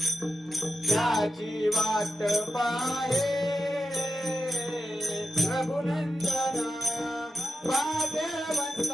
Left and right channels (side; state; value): both; normal; correlation 0.90